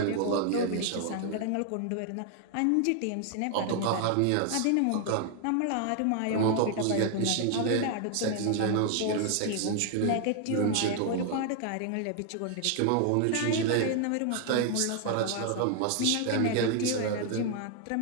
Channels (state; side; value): different; both; correlation 0.00